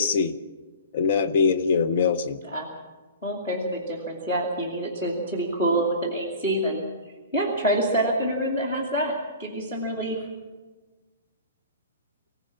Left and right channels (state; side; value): inverted; both; correlation -0.39